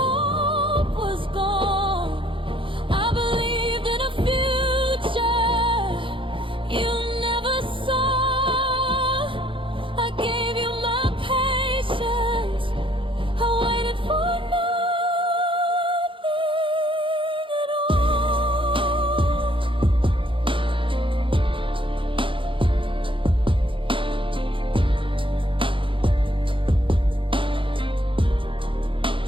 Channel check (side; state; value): left; late; 0.25 ms